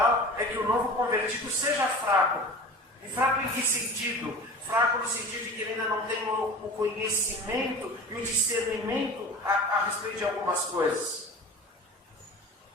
é que o novo convertido seja fraco. E fraco em que sentido? Fraco no sentido de que ele ainda não tem o conhecimento e o discernimento a respeito de algumas coisas.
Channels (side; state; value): both; normal; correlation 0.37